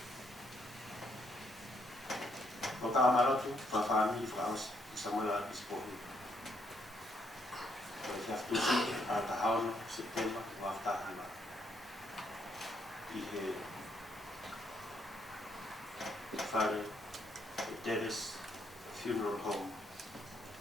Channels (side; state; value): both; normal; correlation 0.73